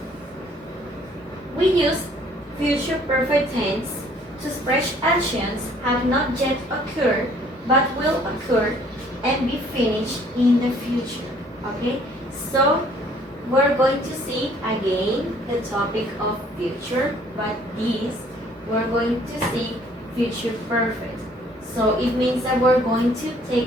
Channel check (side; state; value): both; normal; correlation 0.59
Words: We use future perfect tense to express actions have not yet occurred but will occur and be finished in the future. Okay, so we're going to see again the topic of future, but this we're going to see future perfect. So it means that we're going to